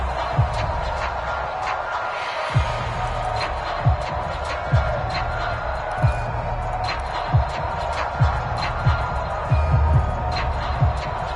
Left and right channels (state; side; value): identical; both; correlation 1.00